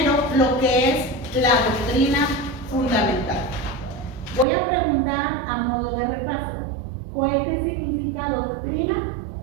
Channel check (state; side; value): drops out; left; at 4.5 s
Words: lo que es la doctrina fundamental. Voy a preguntar a modo de repaso. Joel, ¿qué significa doctrina?